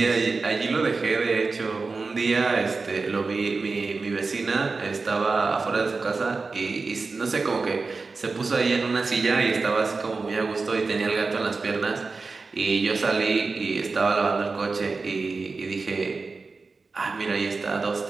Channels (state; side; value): quieter; left; 4.1 dB